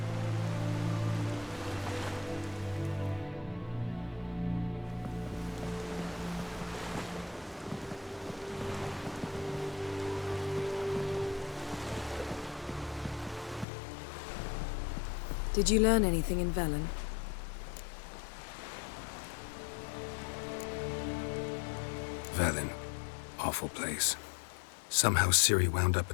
Did you learn anything in Velen? Velen. Awful place. Somehow Ciri wound up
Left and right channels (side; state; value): right; drops out; at 13.7 s